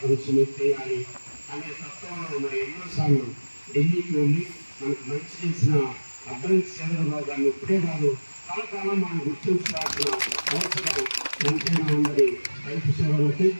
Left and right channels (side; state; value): both; inverted; correlation -1.00